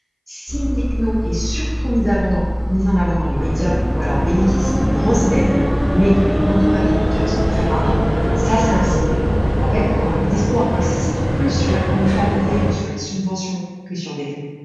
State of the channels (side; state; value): both; identical; correlation 1.00